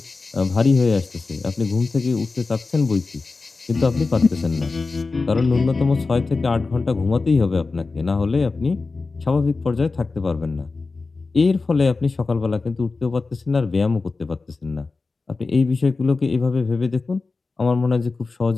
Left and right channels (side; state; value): right; quieter; 3.9 dB